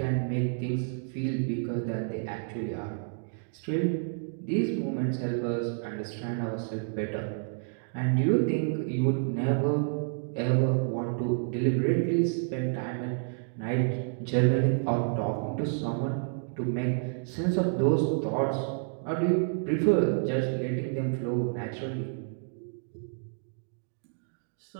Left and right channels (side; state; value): left; silent; digital silence